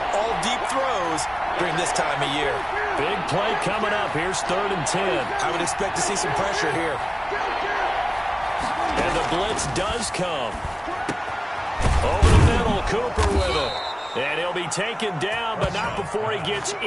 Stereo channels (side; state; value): both; identical; correlation 1.00